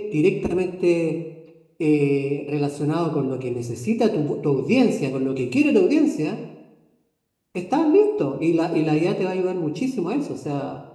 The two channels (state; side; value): identical; both; correlation 1.00